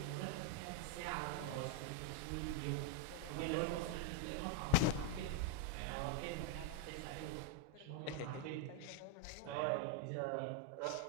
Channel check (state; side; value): different; both; correlation -0.01